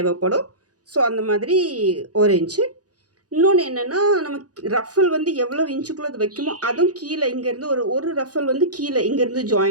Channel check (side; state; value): left; late; 0.68 ms